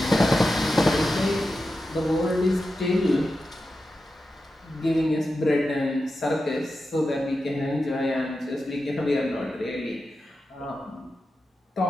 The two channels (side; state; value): both; normal; correlation 0.91